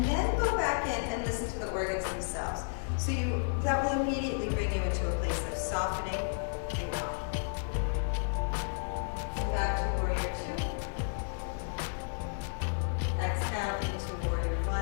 then go back in and listen to the organs themselves. So that will immediately bring you into a place of softening and calm. Come back to Warrior Two. Exhale into Warrior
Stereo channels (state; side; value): silent; right; digital silence